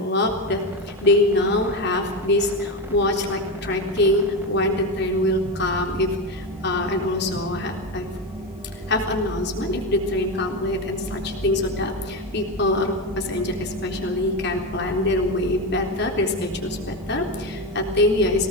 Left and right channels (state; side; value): normal; both; correlation 0.15